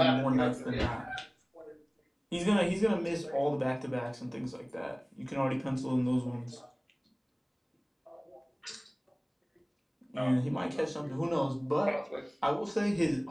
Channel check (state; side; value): identical; both; correlation 1.00